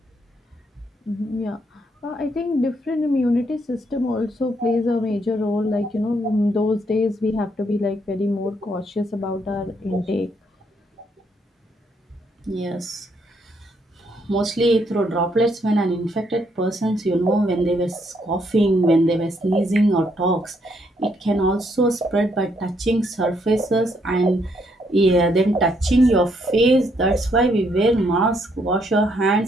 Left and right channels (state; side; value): normal; both; correlation 0.73